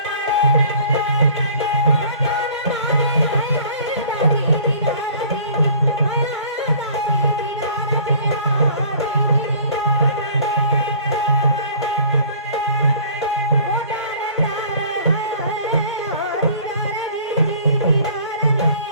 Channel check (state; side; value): inverted; both; correlation -0.50